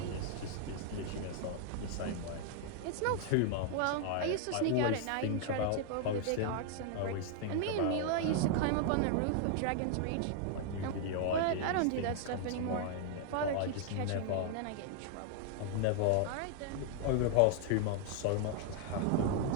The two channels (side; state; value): both; different; correlation 0.00